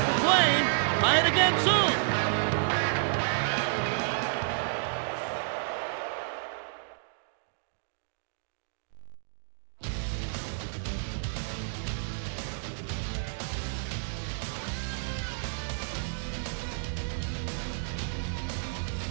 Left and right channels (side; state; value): left; silent; digital silence